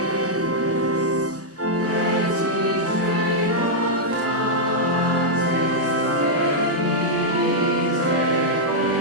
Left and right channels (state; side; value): normal; both; correlation -0.06